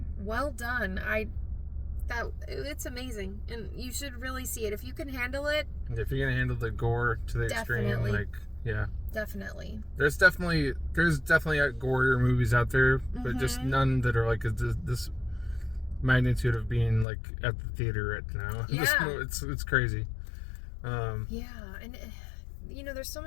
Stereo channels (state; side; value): drops out; right; at 17.1 s